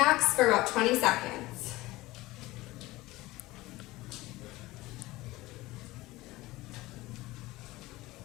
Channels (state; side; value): quieter; right; 19.2 dB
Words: for about 20 seconds.